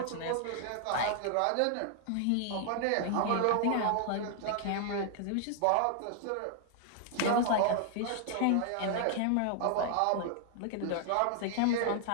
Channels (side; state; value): both; different; correlation 0.00